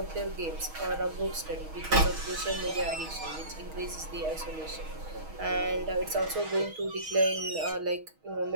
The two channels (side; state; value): left; late; 6.3 ms